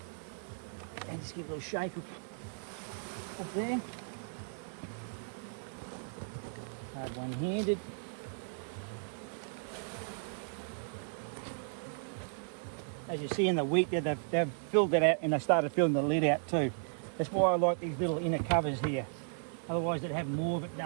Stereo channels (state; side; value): silent; left; digital silence